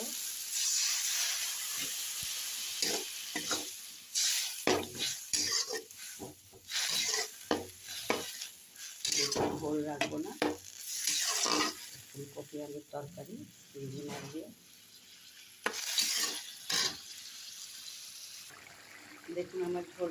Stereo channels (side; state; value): both; identical; correlation 1.00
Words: ঝোল রাখবো না, ফুলকপি আলুর তরকারি চিংড়ি মাছ দিয়ে। দেখুন আমার